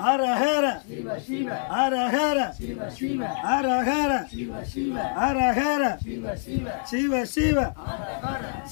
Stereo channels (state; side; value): silent; right; 61 dB below the other